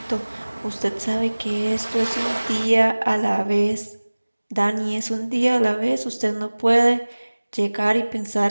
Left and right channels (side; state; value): both; inverted; correlation -1.00